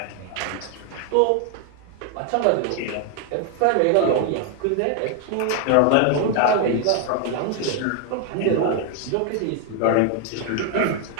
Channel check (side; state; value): both; different; correlation 0.01